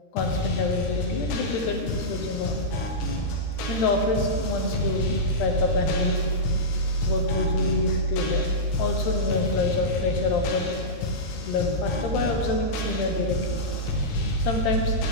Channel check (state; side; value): late; right; 13 ms